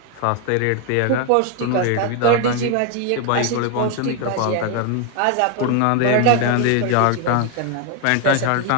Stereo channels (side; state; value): both; different; correlation 0.01